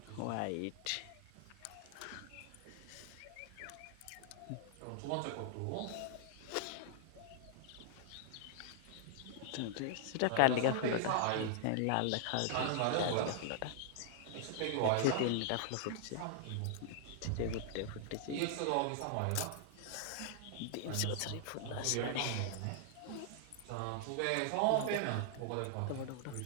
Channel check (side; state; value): both; different; correlation 0.00